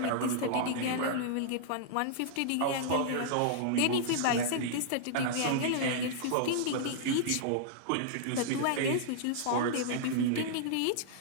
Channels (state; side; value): different; both; correlation -0.01